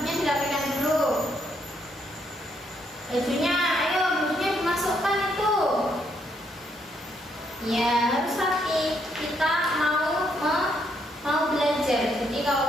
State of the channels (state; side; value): normal; both; correlation 0.74